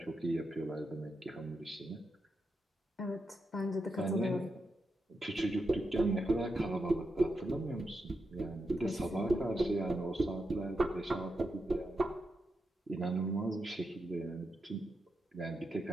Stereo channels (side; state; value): both; normal; correlation 0.86